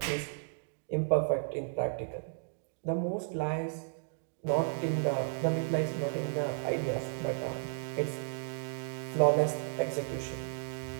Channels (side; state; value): left; silent; digital silence